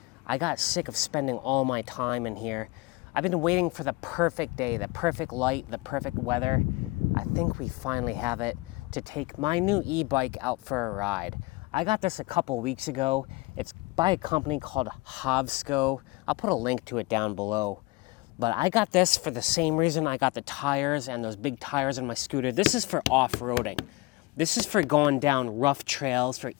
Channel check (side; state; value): right; quieter; 23.9 dB